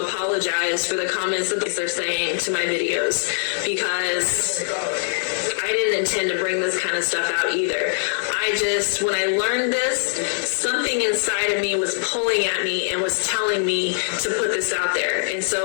for the comments that they're saying to my videos, because I didn't intend to bring this kind of stuff out either. When I learned this, something inside of me was pulling at me and was telling me to put this out there. And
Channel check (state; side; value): silent; right; digital silence